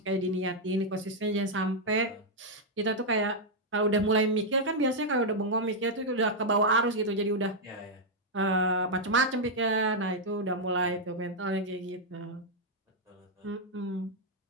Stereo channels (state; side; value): normal; both; correlation -0.03